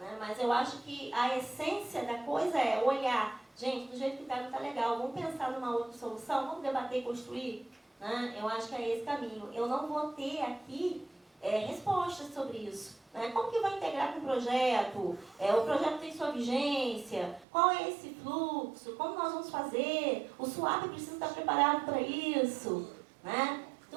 Mas eu acho que a essência da coisa é olhar. Gente, do jeito que está, não está legal. Vamos pensar numa outra solução? Vamos debater e construir? Né? Eu acho que é esse caminho. Eu não vou ter aqui respostas sobre isso. Né? Como que vai integrar com o projeto? O projeto tem sua vigência? Qual é esse fluxo? Como nós vamos fazer? O SUAP precisa estar preparado para isso. Né?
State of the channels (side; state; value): left; drops out; at 17.4 s